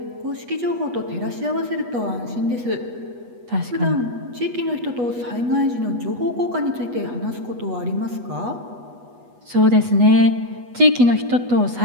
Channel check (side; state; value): left; late; 8.2 ms